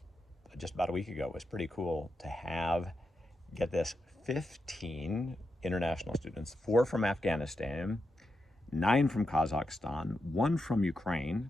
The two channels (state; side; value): normal; both; correlation 0.86